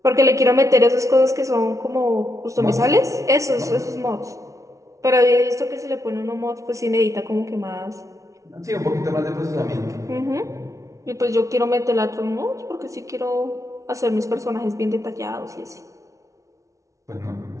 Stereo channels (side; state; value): left; late; 0.15 ms